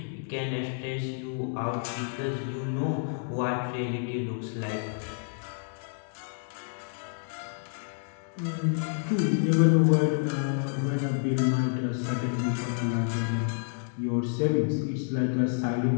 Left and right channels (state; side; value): silent; right; 59 dB below the other